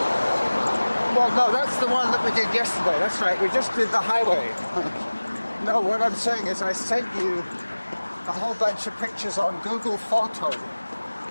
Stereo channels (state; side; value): inverted; both; correlation -1.00